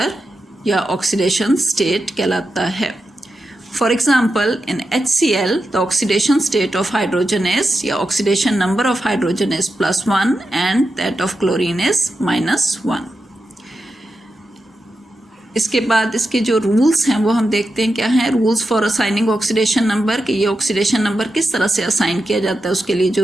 या ऑक्सीडेशन स्टेट कहलाता है. For example in HCl the oxidation state of hydrogen is या oxidation number of hydrogen is +1 and that of chlorine is -1. इसके बाद इसके जो रूल्स हैं वो हम देखते हैं क्या हैं. Rules for assigning oxidation number कि ये ऑक्सीडेशन नंबर किस तरह से असाइन किया जाता है उसके लिए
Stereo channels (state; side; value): normal; both; correlation 0.89